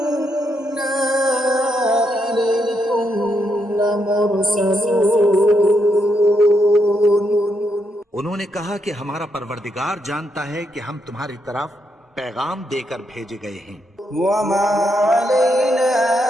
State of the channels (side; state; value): both; normal; correlation 0.79